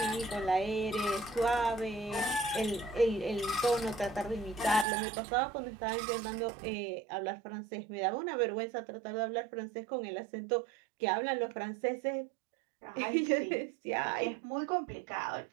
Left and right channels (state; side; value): drops out; left; at 4.9 s